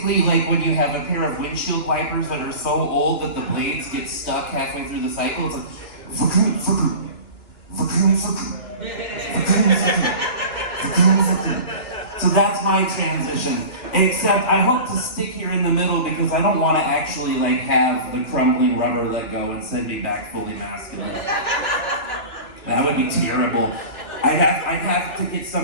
like when you have a pair of windshield wipers that are so old that the blades get stuck halfway through the cycle. It's like, so that's my transition. Except I hope to stick here in the middle because I don't want to actually have the crumbling rubber let go and send me back fully masculine. That would be terrible. I'd have to get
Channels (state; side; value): late; right; 2.9 ms